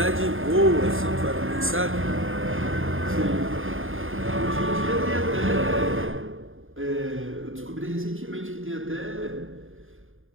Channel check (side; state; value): left; late; 0.59 ms